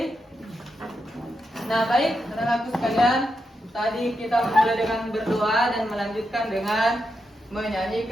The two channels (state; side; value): normal; both; correlation 0.85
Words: Nah, baik, anak-anakku sekalian, tadi kita mulai dengan berdoa dan melanjutkan dengan